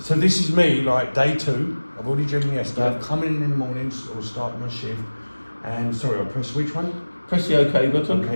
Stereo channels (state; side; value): inverted; both; correlation -1.00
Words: this is me, like day 2. I've already driven yesterday. I've come in the mornings or start my shift, and sorry, I'll press which one? Press the OK button.